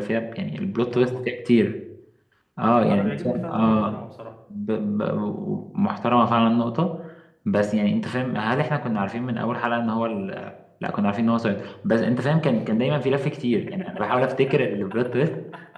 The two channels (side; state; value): both; identical; correlation 1.00